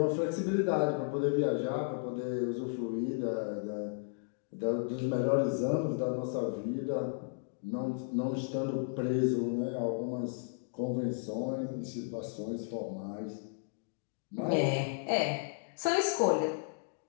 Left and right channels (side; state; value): right; silent; digital silence